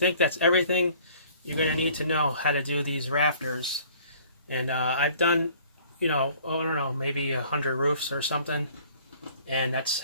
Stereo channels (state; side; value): inverted; both; correlation -0.54